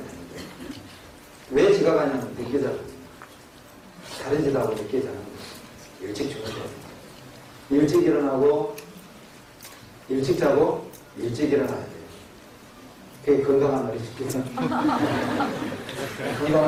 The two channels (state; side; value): identical; both; correlation 1.00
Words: 왜 지각하냐면 늦게 자거든요. 다른 짓하고 늦게 자는 거예요. 일찍 주무셔야 돼요. 일찍 일어나고 일찍 자고 일찍 일어나야 돼요. 그게 건강한 어린이죠.